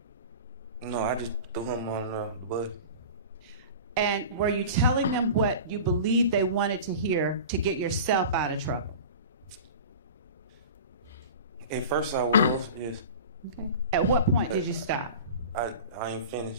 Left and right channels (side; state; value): both; inverted; correlation -0.36